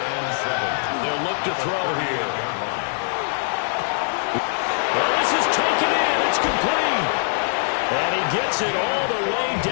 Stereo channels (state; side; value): silent; right; digital silence